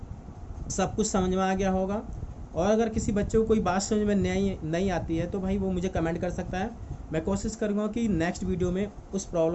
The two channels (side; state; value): both; identical; correlation 1.00